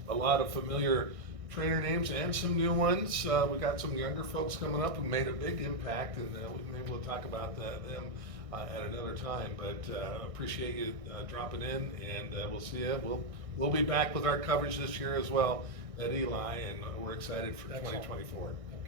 a lot of familiar trainer names and some new ones. We got some younger folks coming up who made a big impact, and maybe we'll talk about them at another time. But appreciate you dropping in, and we'll see you. We'll be back with our coverage this year as well at Eli, and we're excited for Excellent. 2024.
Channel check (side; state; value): left; late; 1.6 ms